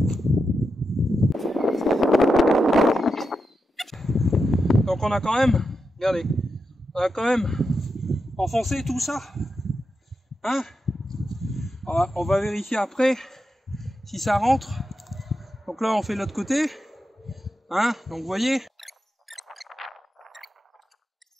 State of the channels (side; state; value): both; normal; correlation 0.87